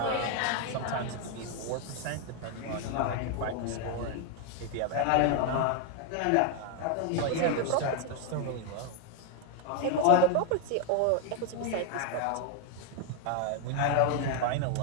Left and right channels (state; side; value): different; both; correlation 0.01